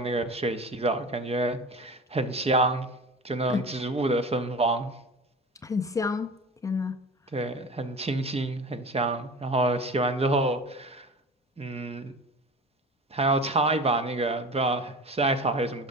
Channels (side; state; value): both; normal; correlation 0.34